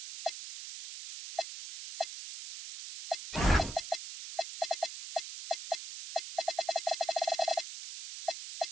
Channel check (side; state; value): right; noise; hiss, 9 dB below the sound